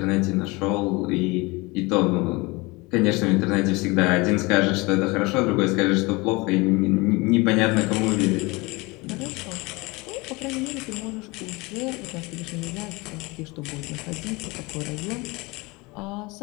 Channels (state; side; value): quieter; right; 24.8 dB